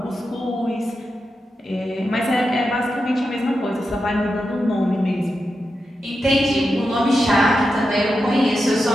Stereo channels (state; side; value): normal; both; correlation 0.89